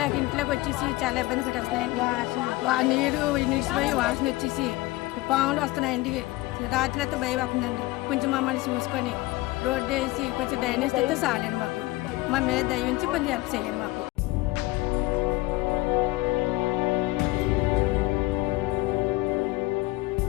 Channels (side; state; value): right; quieter; 19.9 dB